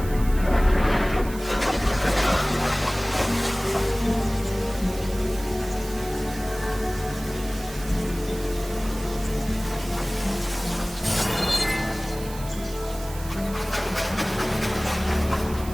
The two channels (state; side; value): noise; right; hiss, 15 dB below the sound